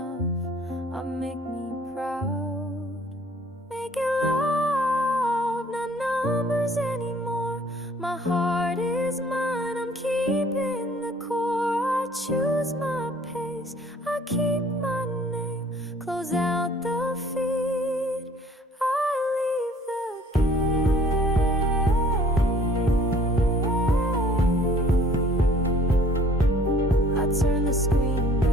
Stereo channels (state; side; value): normal; both; correlation 0.55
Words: make me proud. Make it love, not numbers anymore. My heart is mine, I'm keeping the core. I choose my pace, I keep my name. Close out the feed, I leave the gate. I turn the screen